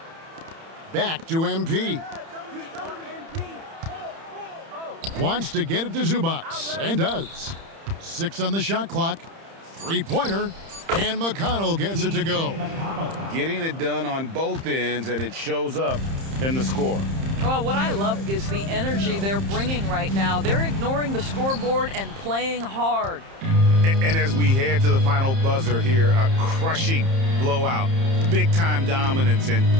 Back to MP. Wants to get it to Zubac, and does. 6 on the shot clock. 3-pointer, and McConnell gets it to go. Getting it done on both ends, and it shows up in the score. Well, what I love is the energy they're bringing right now. They're ignoring the scoreboard and playing hard. And as we head to the final buzzer here, a crushing blowout, big-time dominance,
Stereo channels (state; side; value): late; left; 30 ms